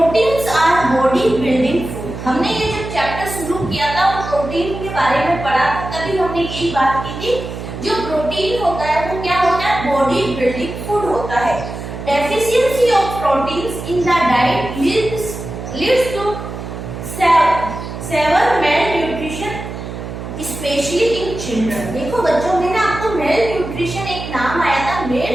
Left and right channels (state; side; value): noise; right; hum, 8 dB below the sound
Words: our body building food. हमने ये जो चैप्टर शुरू किया था वो प्रोटीन के बारे में पढ़ा, तभी हमने यही बात की थी, जो प्रोटीन होता है वो क्या होता है, बॉडी बिल्डिंग फूड होता है। Deficiency of proteins in the diet leads to severe malnutrition specially in children. देखो बच्चों, मैंने आपको मेल न्यूट्रिशन एक नाम आया था, मेल